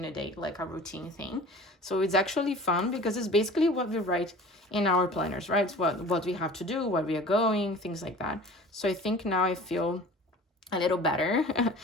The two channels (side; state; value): both; normal; correlation 0.42